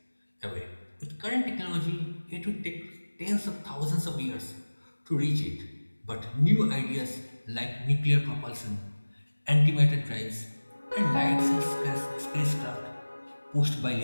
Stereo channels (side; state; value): both; inverted; correlation -1.00